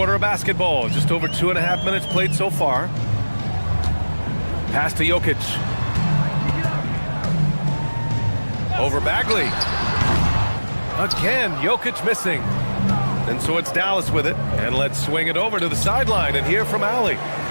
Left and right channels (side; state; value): both; inverted; correlation -1.00